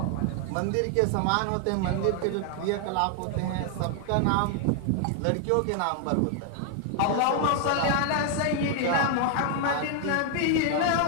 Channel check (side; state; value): both; different; correlation 0.00